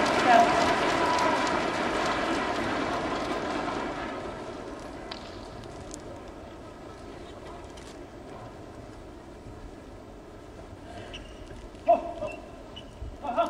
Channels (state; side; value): identical; both; correlation 1.00